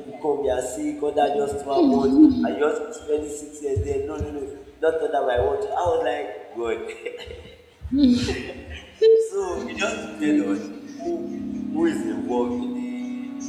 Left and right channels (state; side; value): identical; both; correlation 1.00